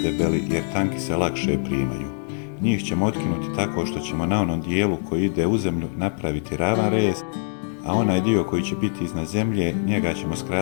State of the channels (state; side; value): silent; right; digital silence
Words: jer tanki se lakše primaju. Njih ćemo otkinuti tako što ćemo na onom dijelu koji ide u zemlju napraviti ravan rez, a onaj dio koji će biti iznad zemlje, njega ćemo